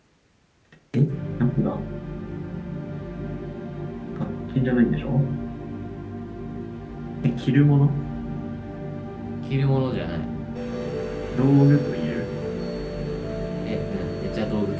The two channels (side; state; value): both; identical; correlation 1.00